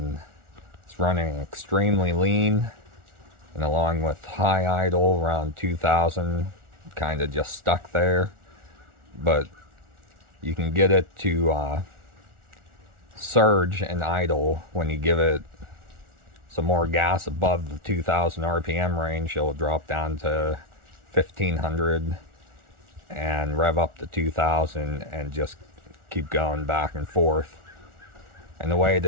it's running extremely lean, and along with high idle around 2000, kind of just stuck there. But you can get it to surge and idle when you give it some more gas above the 2000 RPM range. It'll drop down to 1500 and rev up to 2000 and just keep going back and forth. And the way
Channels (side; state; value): left; late; 1.4 ms